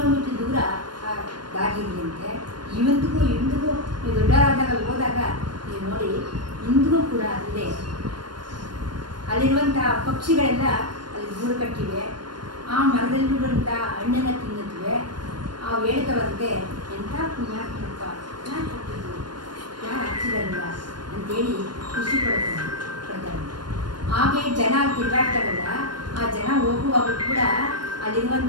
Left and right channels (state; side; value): late; left; 0.71 ms